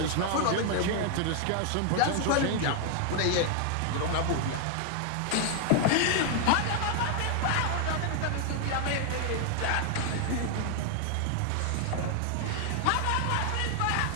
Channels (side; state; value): both; different; correlation 0.00